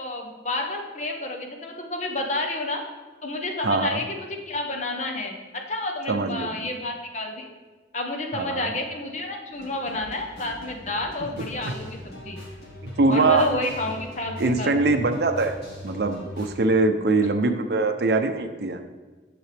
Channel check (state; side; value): normal; both; correlation 0.11